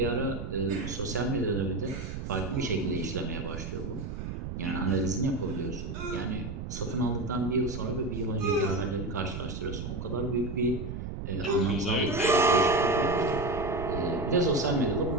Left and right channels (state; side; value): noise; right; rumble, 6 dB below the sound